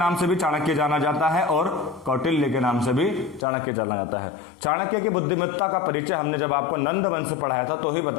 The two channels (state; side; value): drops out; right; at 3.5 s